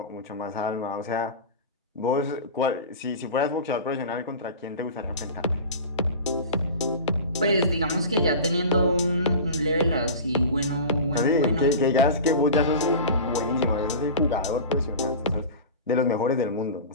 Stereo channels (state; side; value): inverted; both; correlation -0.32